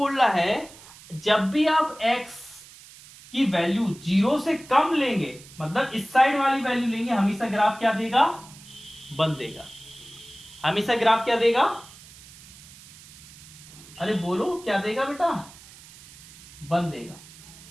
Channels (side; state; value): right; noise; hiss, 20 dB below the sound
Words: रहा है जब भी आप x की वैल्यू 0 से कम लेंगे, मतलब इस साइड वाली वैल्यू लेंगे, हमेशा ग्राफ क्या देगा? 1 देगा। हमेशा ग्राफ क्या देगा? अरे बोलो क्या देगा बेटा? 1 देगा।